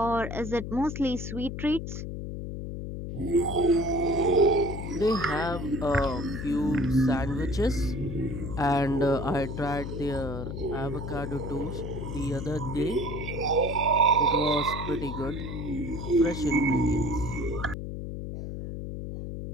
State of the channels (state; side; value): noise; left; hum, 6 dB below the sound